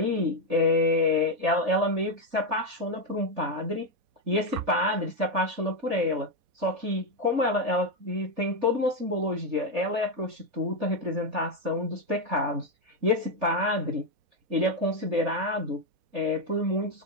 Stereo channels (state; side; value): late; left; 4.1 ms